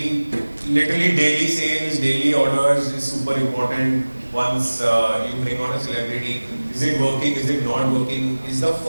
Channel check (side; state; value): both; inverted; correlation -1.00